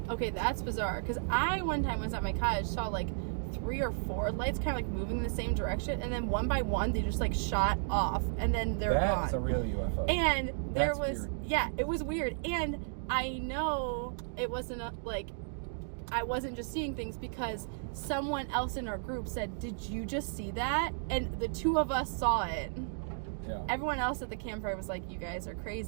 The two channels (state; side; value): silent; left; digital silence